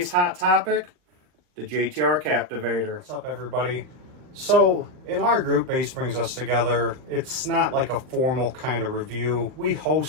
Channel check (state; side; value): late; left; 40 ms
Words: hot topic, the JTR Captivator. What's up, everybody? So in our group, Bass Brings Us Together, it's not like a formal kind of review. We